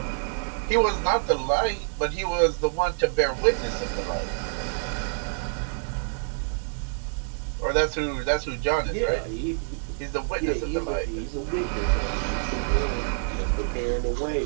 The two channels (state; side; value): silent; left; 60 dB below the other